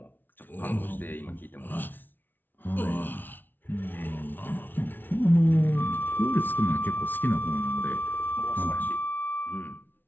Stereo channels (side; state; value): right; late; 0.092 ms